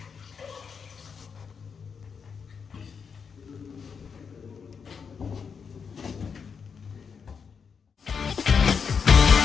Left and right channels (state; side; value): quieter; right; 6.1 dB